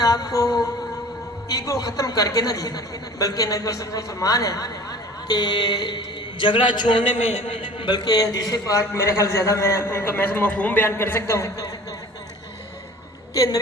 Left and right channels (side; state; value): both; normal; correlation 0.44